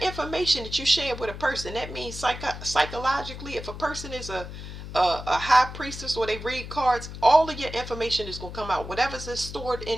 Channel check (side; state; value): left; noise; hum, 10 dB below the sound